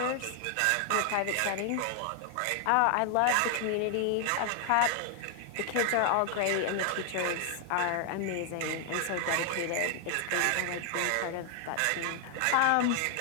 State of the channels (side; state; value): both; different; correlation 0.00